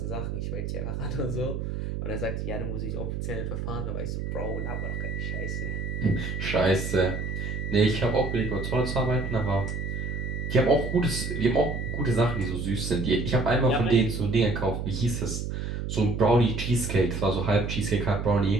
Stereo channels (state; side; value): noise; right; hum, 4 dB below the sound